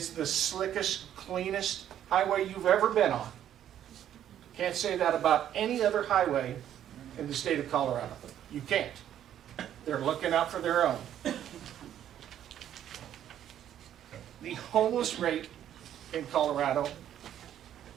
the slickest, cleanest highway you've ever been on. Can't say that about any other highway in the state of Colorado. You can't. They're looking out for their own. The homeless rate in Colorado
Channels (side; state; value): left; quieter; 10.7 dB